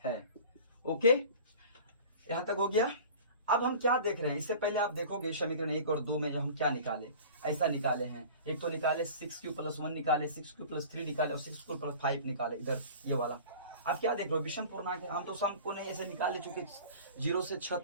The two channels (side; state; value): both; inverted; correlation -0.41